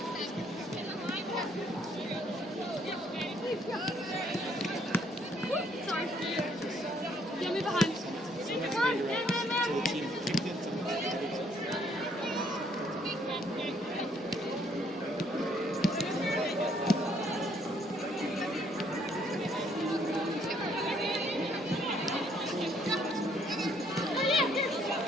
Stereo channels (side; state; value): both; normal; correlation 0.67